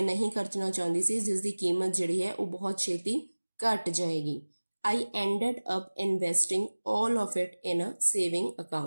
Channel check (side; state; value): both; inverted; correlation -1.00